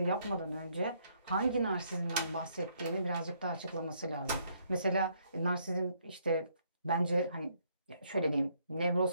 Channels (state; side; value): inverted; both; correlation -0.70